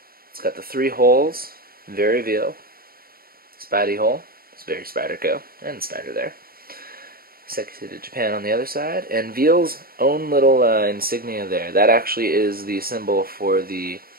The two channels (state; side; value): late; left; 0.43 ms